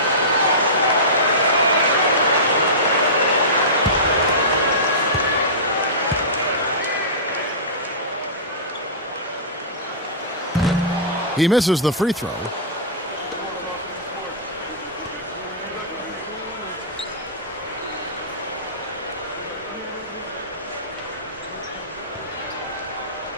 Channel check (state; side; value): normal; both; correlation -0.19